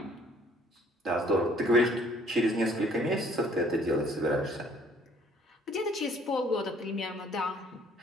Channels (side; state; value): both; normal; correlation 0.59